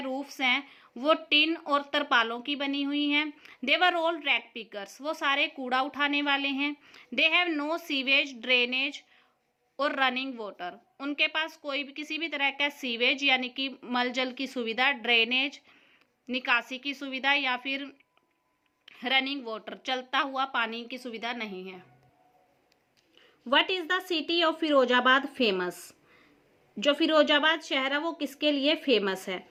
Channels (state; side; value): identical; both; correlation 1.00